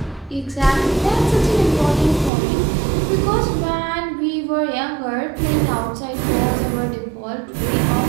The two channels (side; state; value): left; drops out; at 2.3 s